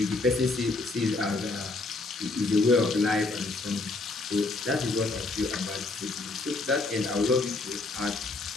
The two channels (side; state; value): right; quieter; 3.4 dB